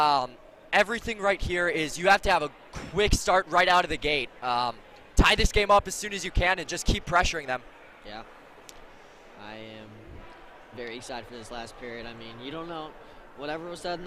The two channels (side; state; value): both; identical; correlation 1.00